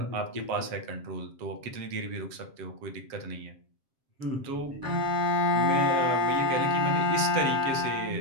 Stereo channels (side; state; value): left; late; 7.5 ms